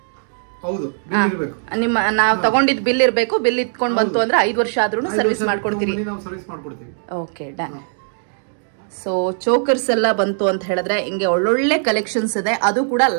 ಹೌದು, ಬಿಲ್ ಇರಬೇಕು. ನಿಮ್ಮ ನಾವು ತಗೊಂಡಿದ್ ಬಿಲ್ ಇರಬೇಕು. ಬಿಲ್ ಇಟ್ಕೊಂಡ್ ಬಂತು ಅಂದ್ರೆ 5 ವರ್ಷ ಆದ್ರೂ ಸರ್ವಿಸ್ ಮಾಡ್ಕೊಡ್ತೀರಿ. ನಾವು ಸರ್ವಿಸ್ ಮಾಡ್ಕೊಡ್ತೀವಿ. Okay, done. ಸೊ ಚೋಕರ್ಸ್ ಎಲ್ಲ ಬಂತು ಅಂತ ಹೇಳಿದ್ರೆ ಹಿಂಗೆ ಒಳ್ಳೊಳ್ಳೆ ಕಲೆಕ್ಷನ್ಸ್ ಇದೆ. ಅದು ಕೂಡ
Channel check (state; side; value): silent; left; digital silence